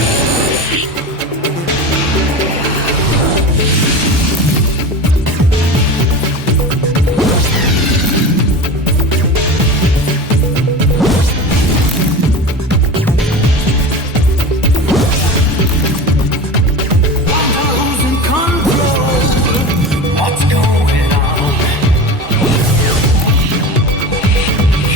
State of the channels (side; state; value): both; normal; correlation 0.30